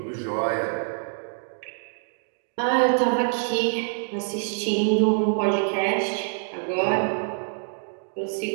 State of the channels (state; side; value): silent; left; digital silence